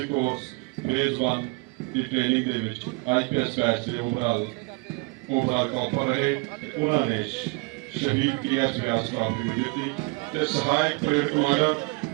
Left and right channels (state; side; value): quieter; left; 28.5 dB